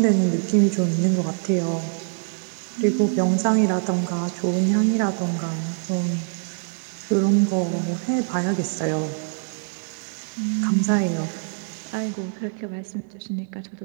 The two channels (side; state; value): left; silent; 63 dB below the other